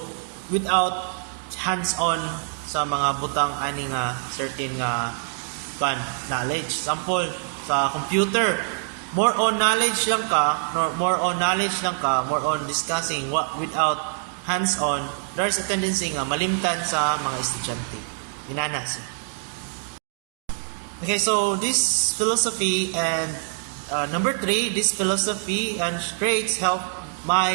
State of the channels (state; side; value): silent; left; 62 dB below the other